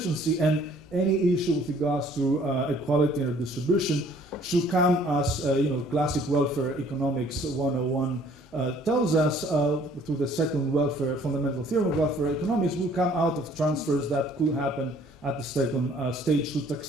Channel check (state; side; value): normal; both; correlation 0.58